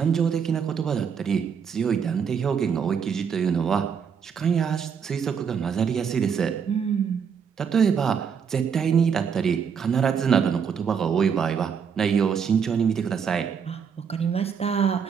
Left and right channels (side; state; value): left; quieter; 6.9 dB